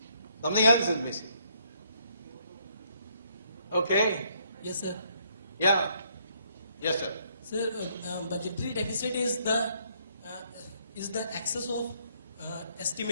Something else is missing. Okay? Yes, sir. Yeah. Yes, sir. Sir, budgetary deficit is the excess of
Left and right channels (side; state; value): both; inverted; correlation -0.69